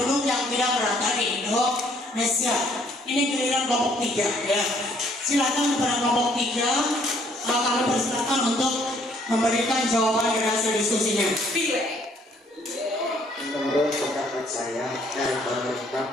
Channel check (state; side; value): normal; both; correlation 0.64